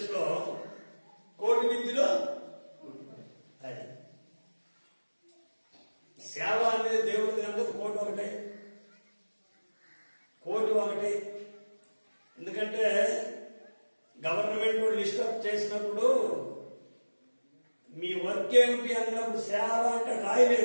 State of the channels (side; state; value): both; inverted; correlation -1.00